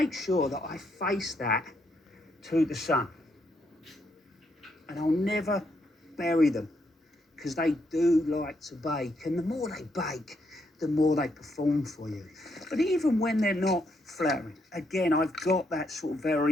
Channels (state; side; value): normal; both; correlation 0.76